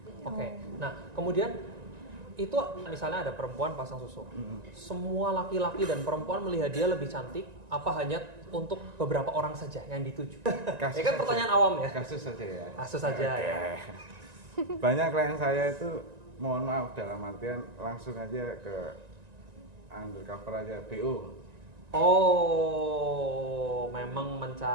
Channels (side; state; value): left; late; 1.9 ms